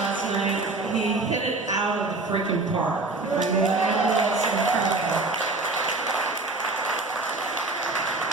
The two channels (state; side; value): quieter; left; 3.3 dB